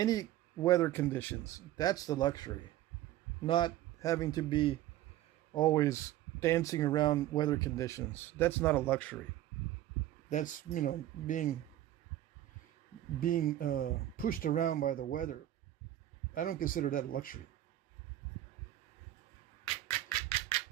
weather conditions. That's the luxury. Not having to be always dancing around weather conditions. That's not a luxury. That's, you know, being pushed around by the weather. I don't consider that a luxury.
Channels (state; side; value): quieter; left; 13.7 dB